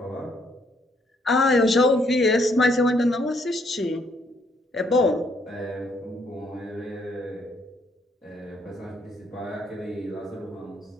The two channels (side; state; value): both; normal; correlation 0.70